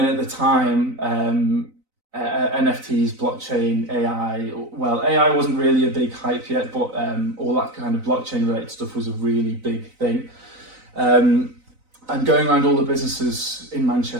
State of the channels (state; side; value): late; left; 4.0 ms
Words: at the time, NFTs, blockchain, AI. Well, AI wasn't really a big hype yet, but all that kind of blockchain related stuff was a really big thing. And going around all the businesses in